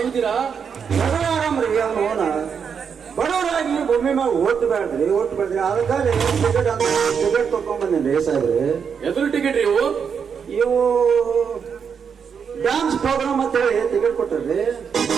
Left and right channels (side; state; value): left; quieter; 6.7 dB